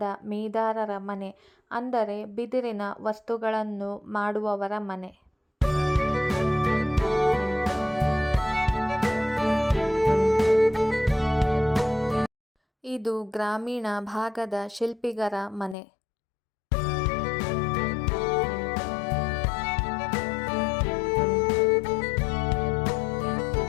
ಮೇದಾರರ ಮನೆ, ಅಂದರೆ ಬಿದಿರಿನ ವಸ್ತುಗಳನ್ನು ಮಾಡುವವರ ಮನೆ. ಇದು ಗ್ರಾಮೀಣ ಭಾಗದ ಶಿಲ್ಪಿಗರ ಮನೆ.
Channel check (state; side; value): drops out; right; at 15.8 s